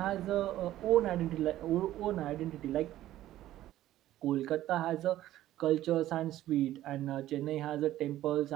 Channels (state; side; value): quieter; left; 14.0 dB